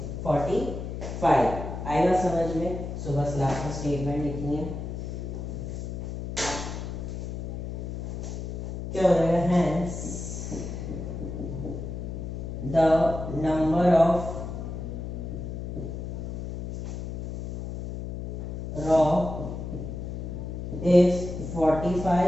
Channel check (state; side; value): noise; left; hum, 6 dB below the sound